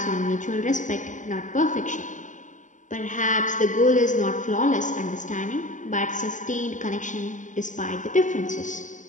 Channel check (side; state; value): right; late; 0.37 ms